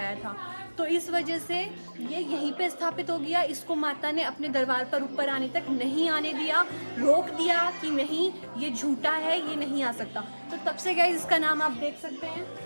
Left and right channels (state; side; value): inverted; both; correlation -1.00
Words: था। तो इस वजह से ये यहीं पे स्थापित हो गया। इसको माता ने अपने दरबार पर ऊपर आने तक नहीं आने दिया, रोक दिया कि नहीं ये झूठा है, ये नहीं आ सकता। तो तब से गाइस इसका नाम आप देख सकते हैं,